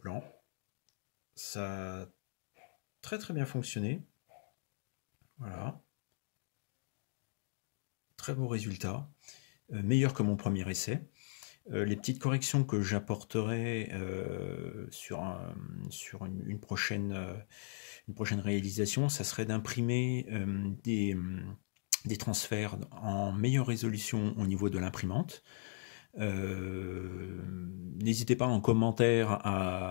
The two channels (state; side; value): silent; right; digital silence